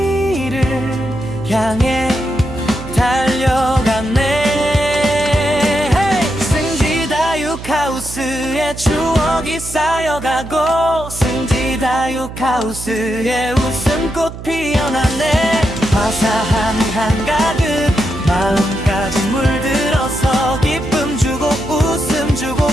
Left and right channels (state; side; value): noise; right; hum, 11 dB below the sound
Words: 향해 달려간 승지다육하우스의 추억이 쌓여가고 승지다육하우스의 웃음꽃 피어났네. 화사한 한가득 마음까지 물들어서 기쁨 주고 웃음 주고